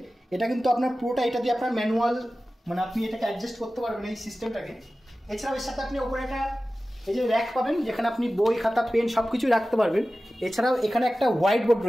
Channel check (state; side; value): normal; both; correlation 0.95